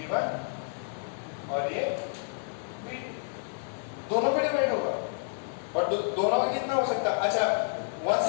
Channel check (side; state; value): right; silent; 58 dB below the other